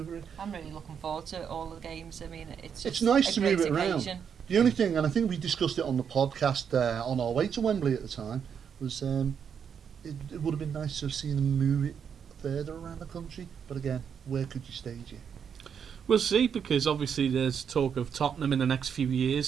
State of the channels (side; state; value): left; quieter; 7.4 dB